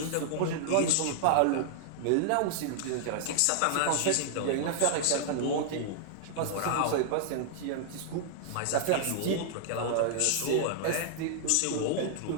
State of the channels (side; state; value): both; different; correlation -0.01